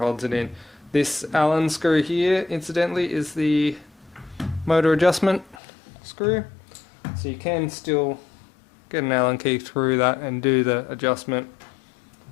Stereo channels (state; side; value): drops out; right; at 5.6 s